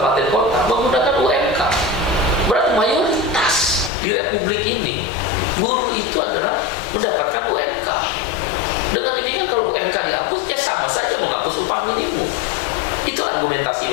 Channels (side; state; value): right; drops out; at 3.9 s